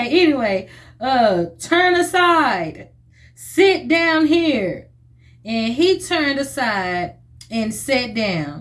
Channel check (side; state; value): both; identical; correlation 1.00